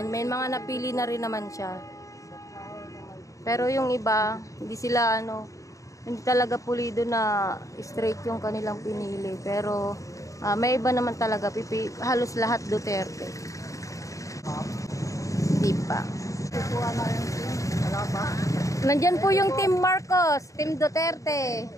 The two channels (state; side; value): late; right; 0.16 ms